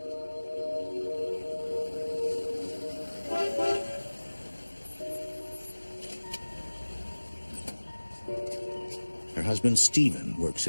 Her husband Stephen works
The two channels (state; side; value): inverted; both; correlation -1.00